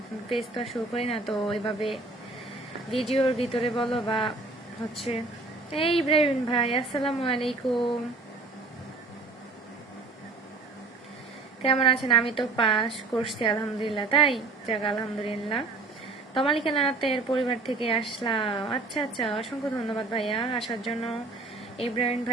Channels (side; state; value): left; quieter; 3.5 dB